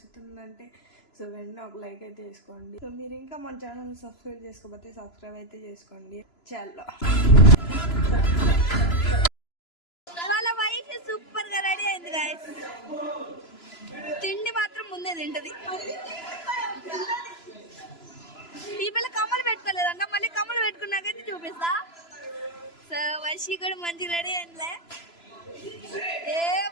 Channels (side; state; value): right; late; 3.0 ms